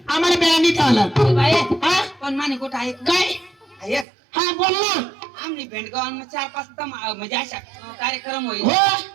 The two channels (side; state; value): left; drops out; at 4.0 s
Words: आम्हाला बेळानी आला बाये हा पण माने कुठं आहे काय ऐक हा बोल ना आम्ही बेंडगावांना 4-5 म्हणजे अशा कार्यक्रम होईल हो